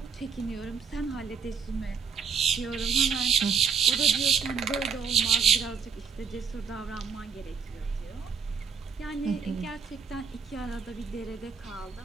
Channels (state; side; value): quieter; left; 6.0 dB